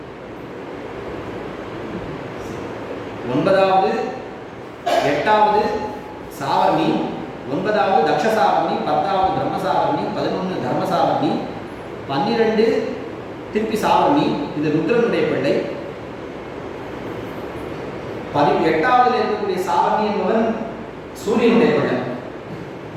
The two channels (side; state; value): both; identical; correlation 1.00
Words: 9வது 8வது சாவர்ணி, 9வது தக்ஷசாவர்ணி, 10வது பிரம்மசாவர்ணி, 11 தர்மசாவர்ணி, 12 திருப்பி சாவர்ணி. இது ருத்ரனுடைய பிள்ளை. 8வது இருக்கக்கூடிய சாவர்ணி என்பவன் சூரியனுடைய பிள்ளை.